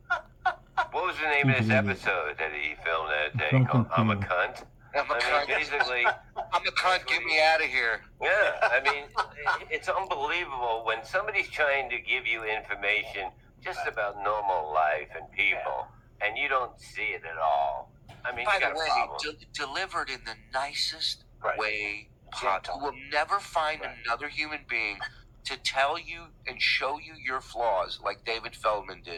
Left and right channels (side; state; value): both; identical; correlation 1.00